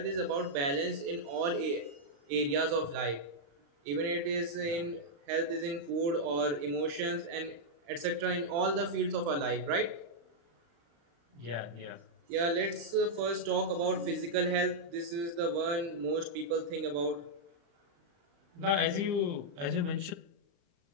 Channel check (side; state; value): left; late; 36 ms